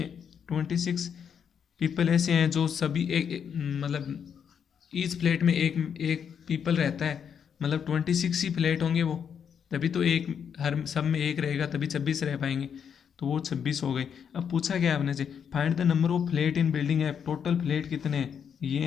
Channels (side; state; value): right; quieter; 7.6 dB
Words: 26 पीपल ऐसे हैं जो सभी मतलब ईच फ्लैट में एक पीपल रहता है, मतलब 26 ही फ्लैट होंगे वो, तभी तो एक हर सब में एक रहेगा, तभी 26 रह पाएंगे, तो वो 26 हो गए। अब पूछा गया आपने से find the number of flat in building app. Total flat कितने हैं, ये